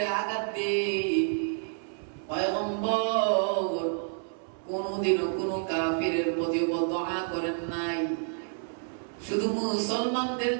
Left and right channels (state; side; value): silent; left; 58 dB below the other